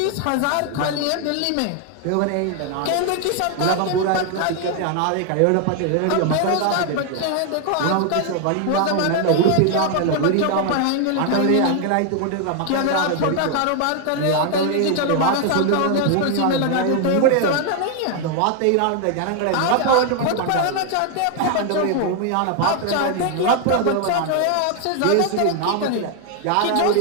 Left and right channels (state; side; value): different; both; correlation 0.00